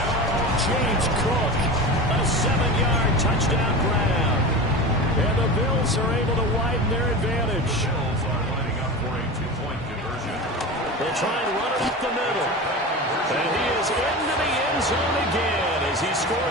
James Cook, A 7-yard touchdown grab. and the Bills are able to widen their advantage. Bills are lining up for a 2-point conversion. They'll try and run it up the middle. And he is into the end zone again as he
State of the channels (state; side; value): normal; both; correlation 0.28